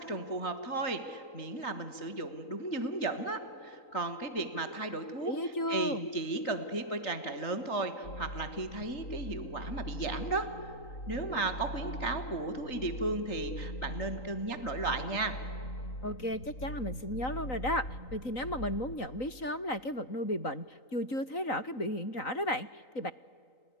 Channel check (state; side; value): late; right; 3.9 ms